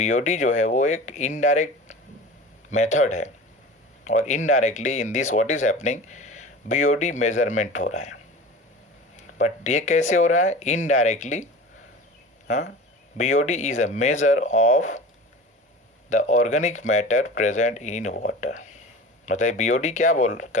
जो है वो एक indirect method है, और indirectly in this what is happening, BOD measurement हो रहा है. बट ये कैसे हो रहा है? Indirectly. BOD is a measure of the organic matter present in water. मतलब BOD क्या बोल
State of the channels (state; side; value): normal; both; correlation 0.36